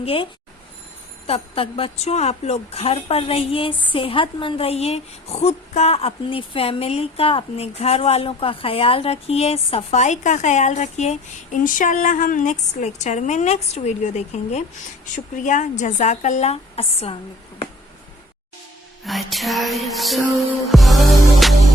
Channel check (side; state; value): both; normal; correlation 0.52